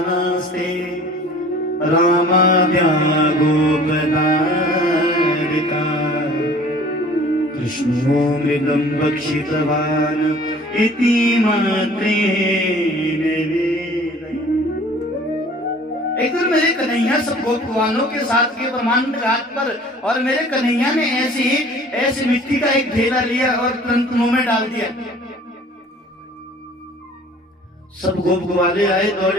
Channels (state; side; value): normal; both; correlation 0.49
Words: रामाद्या गोपदारिका, कृष्णो मृगं भक्षितवान् इति मात्रेण वेदयन्। एक दिन मेरे कन्हैया सब गोपवालों के साथ के ब्रह्मांड घाट पर, और मेरे कन्हैया ने ऐसी मिट्टी का एक ढेला लिया और तुरंत मुंह में डाल दिया। सब गोप ग्वाले आए